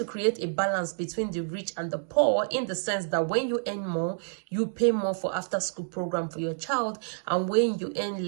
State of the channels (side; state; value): left; silent; digital silence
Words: create a balance between the rich and the poor, in the sense that when you earn more, you pay more for after school program for your child, and when you earn